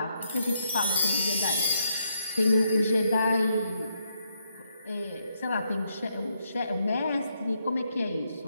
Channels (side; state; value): both; inverted; correlation -0.77